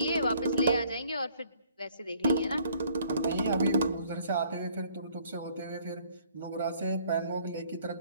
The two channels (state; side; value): inverted; both; correlation -0.60